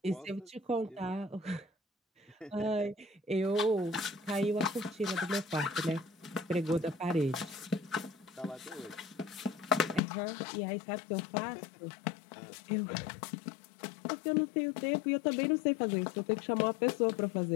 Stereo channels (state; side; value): drops out; right; at 10.0 s